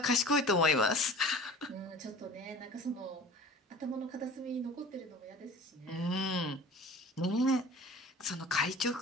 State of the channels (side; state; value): both; normal; correlation 0.42